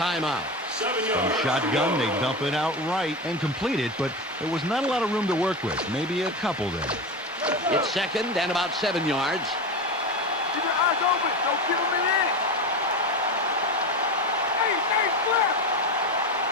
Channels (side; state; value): both; normal; correlation 0.22